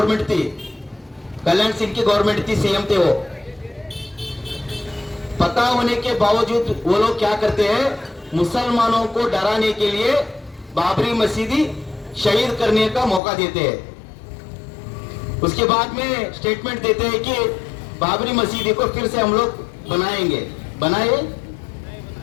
थी, कल्याण सिंह की गवर्नमेंट थी, सीएम थे वो। पता होने के बावजूद वो लोग क्या करते हैं? मुसलमानों को डराने के लिए बाबरी मस्जिद शहीद करने का मौका देते हैं। उसके बाद में स्टेटमेंट देते हैं कि बाबरी मस्जिद को फिर से हम लोग बनाएंगे।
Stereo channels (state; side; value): drops out; right; at 13.2 s